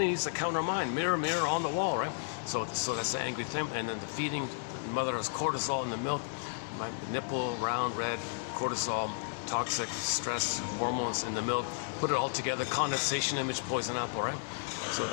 needs that count are mine. Mirror, mirror on the wall, right? So that's the angry thing. And then the feeding. The mother has cortisol in the milk. My nipple, round, red, cortisol. toxic stress hormones in the milk, put it all together, condensation image, poison apple, right? So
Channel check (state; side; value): silent; right; 56 dB below the other